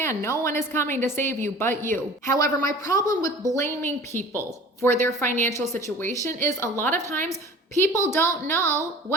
no one is coming to save you but you. However, my problem with blaming people for their financial situation is a lot of times people don't know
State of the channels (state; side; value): normal; both; correlation 0.43